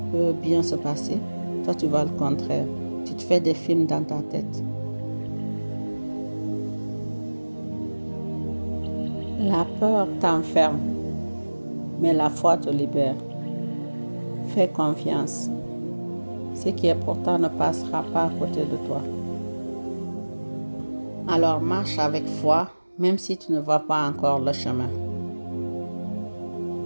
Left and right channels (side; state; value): both; inverted; correlation -1.00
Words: peut bien se passer, toi tu vois le contraire. Tu te fais des films dans ta tête. La peur t'enferme, mais la foi te libère. Fais confiance. Ce qui est pour toi ne passera pas à côté de toi. Alors marche avec foi, même si tu ne vois pas encore le chemin.